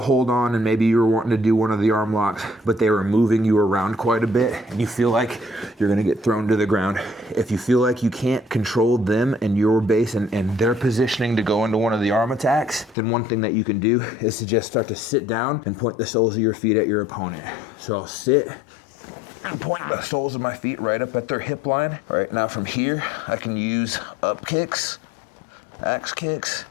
on and maybe you were wanting to do one of the arm locks, but they were moving you around quite a bit and you feel like you're gonna get thrown to the ground. If you feel like you can't control them and your base and their positioning to go into one of the arm attacks, then one thing that you can do is to just start to sit down and point the soles of your feet at your opponent. So I'll sit, and point the soles of my feet right up at their hip line. All right, now from here, I can use up kicks, axe kicks,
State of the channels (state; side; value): drops out; right; at 13.0 s